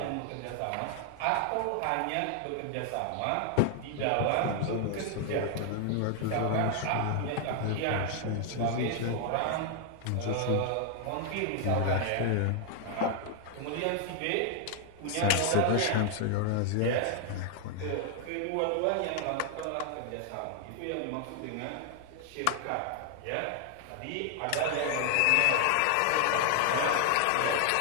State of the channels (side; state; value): both; different; correlation 0.00